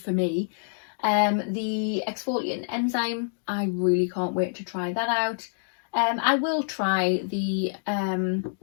me. The Exfoliating Enzyme, I really can't wait to try that out. I will try the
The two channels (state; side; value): silent; right; digital silence